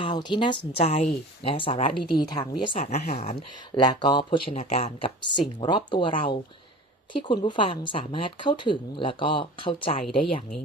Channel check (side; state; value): both; normal; correlation 0.38